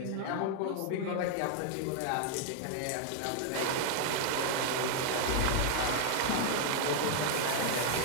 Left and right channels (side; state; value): both; different; correlation 0.00